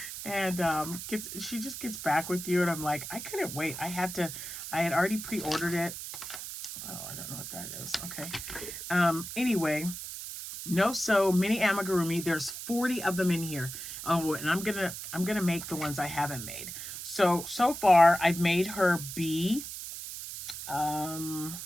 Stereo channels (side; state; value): right; noise; hiss, 8 dB below the sound